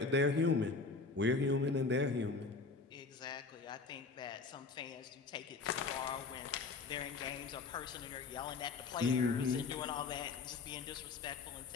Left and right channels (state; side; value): quieter; right; 4.3 dB